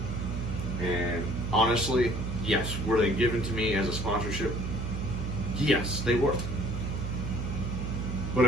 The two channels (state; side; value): noise; right; hum, 3 dB below the sound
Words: And honestly, yes, were they given to me as a sponsorship? Yes, they were. But